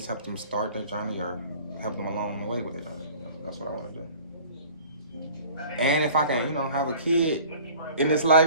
help them start their journey or help them along the way with their journey. That's what I want to do. And if I can, have a kid in this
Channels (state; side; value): inverted; both; correlation -0.47